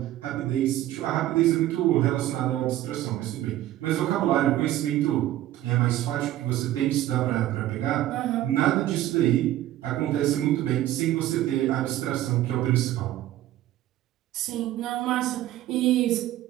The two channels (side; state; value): left; quieter; 14.0 dB